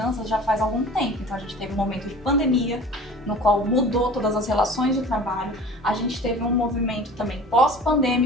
já faz algum tempo. Então a gente teve um momento de pandemia, no qual mudou todas as relações de trabalho. A gente teve um movimento também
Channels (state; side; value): normal; both; correlation 0.42